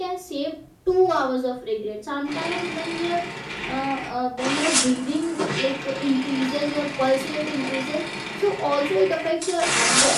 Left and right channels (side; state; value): both; identical; correlation 1.00